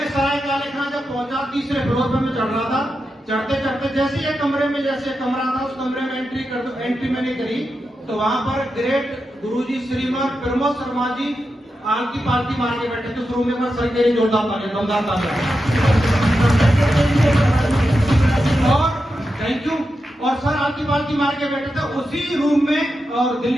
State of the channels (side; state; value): both; normal; correlation 0.89